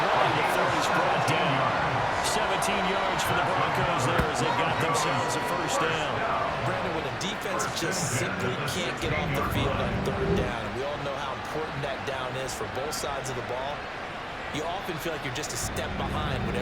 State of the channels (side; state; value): both; identical; correlation 1.00